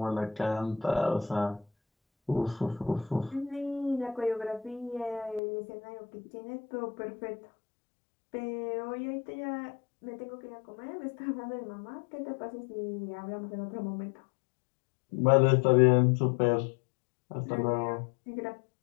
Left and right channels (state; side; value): drops out; right; at 5.4 s